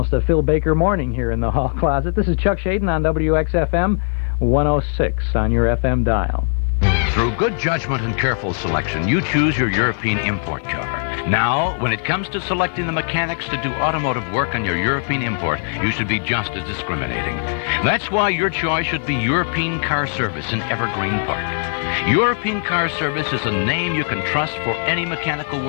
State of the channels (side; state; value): right; silent; 62 dB below the other